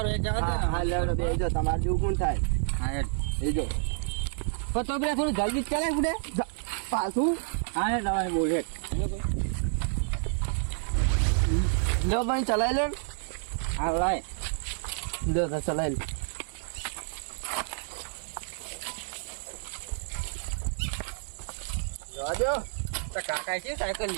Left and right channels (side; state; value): left; silent; 58 dB below the other